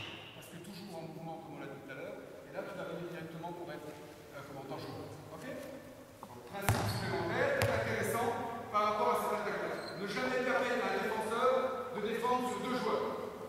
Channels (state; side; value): identical; both; correlation 1.00